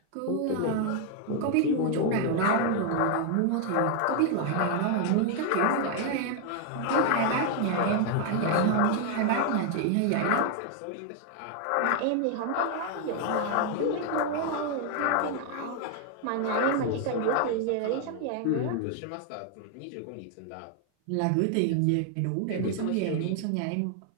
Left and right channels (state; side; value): different; both; correlation 0.00